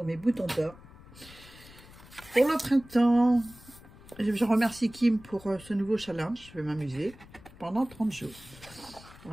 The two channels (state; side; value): noise; left; rumble, 21 dB below the sound